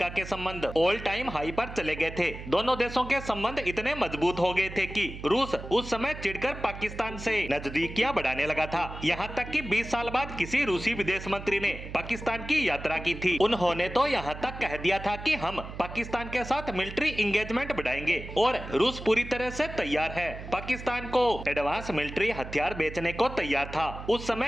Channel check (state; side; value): noise; right; hum, 11 dB below the sound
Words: के संबंध ऑल टाइम हाई पर चले गए थे। दोनों देशों के संबंध इतने मजबूत हो गए थे कि रूस उस समय चिढ़कर पाकिस्तान से नजदीकियां बढ़ाने लगा था। यहाँ तक कि 20 साल बाद किसी रूसी विदेश मंत्री ने पाकिस्तान की यात्रा की थी। उन्होंने तो यहाँ तक कह दिया था कि हम पाकिस्तान के साथ मिलिट्री इंगेजमेंट बढ़ाएंगे और रूस पूरी तरह से तैयार है। पाकिस्तान को एडवांस मिलिट्री हथियार बेचने को तैयार था। उस